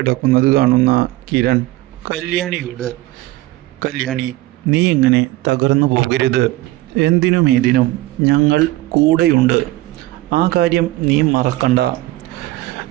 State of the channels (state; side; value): quieter; left; 17.8 dB